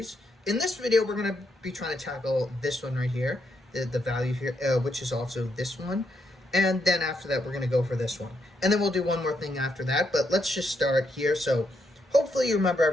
In this video, we're going to be trying to tackle this one right here, the value here, which is also this one. And then after that, we're going to go for this one. And then we'll do one more thing after that, but let's just start here. So hopefully you remember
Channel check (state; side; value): normal; both; correlation 0.79